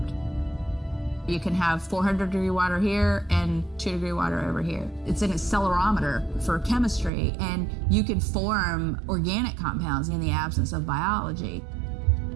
You can have 400-degree water here and 2-degree water over here. It's an accelerometer for chemistry, and you can form organic compounds in the absence of biology.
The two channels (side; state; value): left; drops out; at 7.1 s